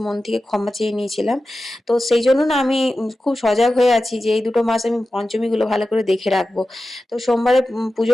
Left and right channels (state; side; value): normal; both; correlation 0.93